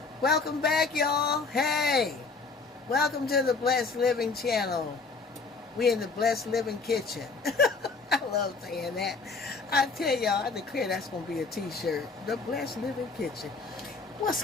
Welcome back, y'all. Hey, welcome to the Blessed Living channel. We in the Blessed Living kitchen. I love saying that. I tell y'all, I declare that's going to be a t-shirt. The Blessed Living kitchen. What's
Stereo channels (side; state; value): right; quieter; 4.3 dB